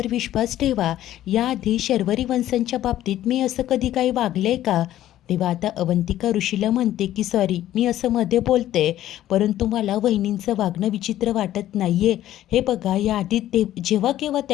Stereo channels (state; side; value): quieter; right; 13.1 dB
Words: विश्वास ठेवा, याआधी शर्वरी वंशांच्या बाबतीत मी असं कधी काही वागले का. तेव्हा आता अवंतिका ऋषीला म्हणते की सॉरी, मी असं मध्ये बोलते, परंतु मला वहिनींचं वागणं विचित्र वाटत नाहीये. हे बघा, याआधी ते जेव्हा केव्हा